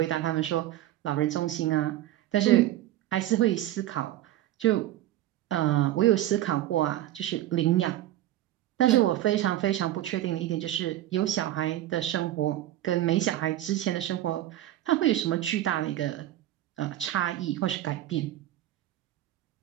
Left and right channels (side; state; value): left; quieter; 13.8 dB